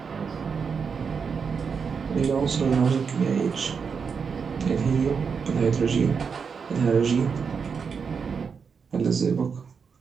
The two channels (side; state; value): left; quieter; 5.9 dB